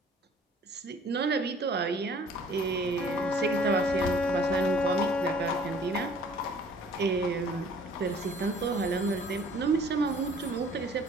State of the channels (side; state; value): both; normal; correlation 0.54